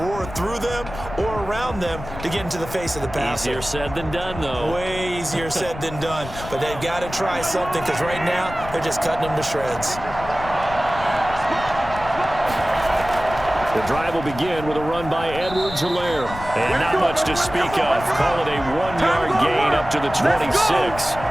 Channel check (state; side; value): noise; left; rumble, 12 dB below the sound